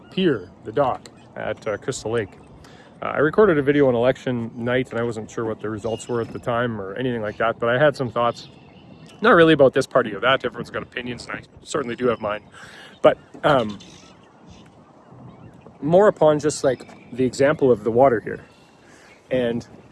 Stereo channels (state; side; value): identical; both; correlation 1.00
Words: pier, the dock at Crystal Lake. I recorded a video on election night and I wasn't sure what the results were at the time or anything like that, but I had some thoughts, not really about this party or that. Everyone's got opinions and I certainly do have mine, but more upon just like the example of the water here and